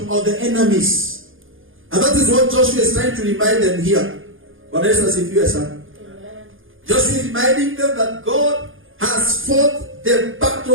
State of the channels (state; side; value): late; left; 0.58 ms